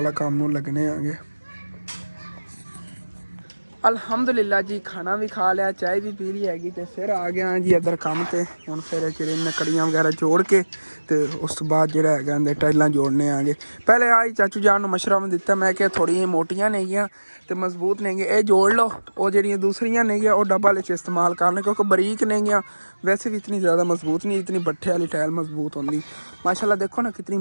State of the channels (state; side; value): inverted; both; correlation -1.00